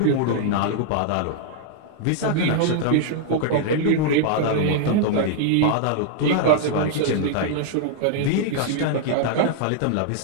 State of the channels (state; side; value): different; both; correlation -0.01